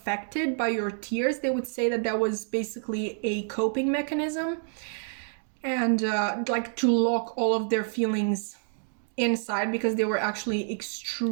by your tears, they would say that that was basically a coping mechanism, and like to lock all of their feelings inside, because they were actually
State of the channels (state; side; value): silent; left; 59 dB below the other